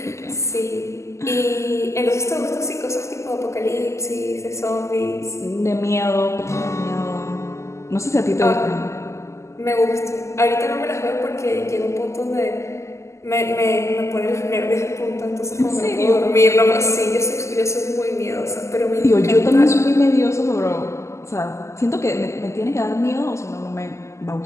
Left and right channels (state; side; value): late; right; 0.13 ms